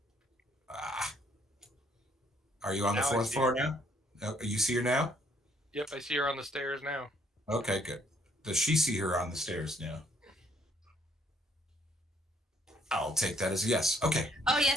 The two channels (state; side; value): normal; both; correlation 0.67